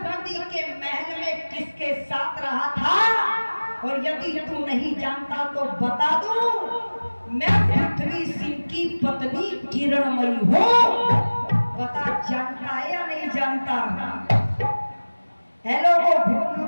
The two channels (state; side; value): inverted; both; correlation -1.00